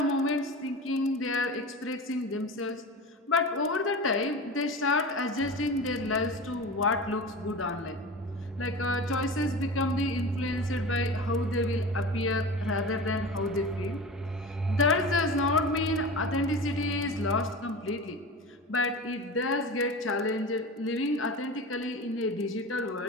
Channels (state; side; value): normal; both; correlation 0.31